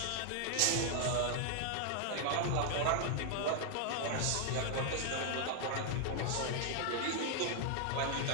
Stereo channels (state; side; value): different; both; correlation 0.00